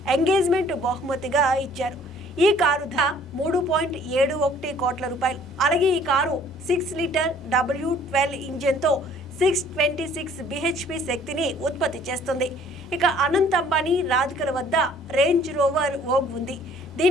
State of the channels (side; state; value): both; normal; correlation 0.57